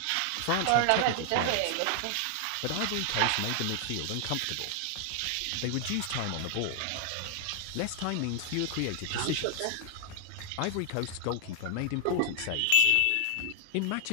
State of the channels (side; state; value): both; different; correlation 0.00